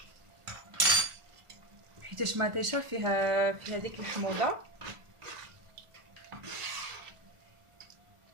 حيتاش مطيشه فيها ديك الحموضه.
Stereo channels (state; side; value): late; left; 1.4 ms